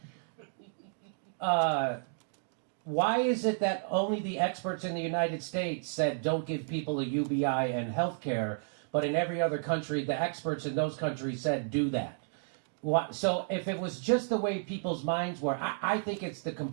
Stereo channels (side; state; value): left; silent; digital silence